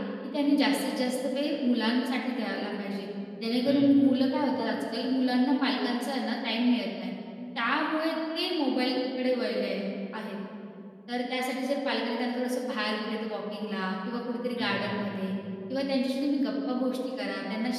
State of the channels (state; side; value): identical; both; correlation 1.00